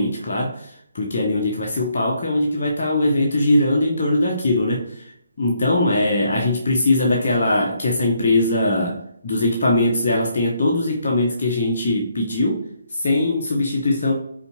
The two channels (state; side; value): inverted; both; correlation -0.72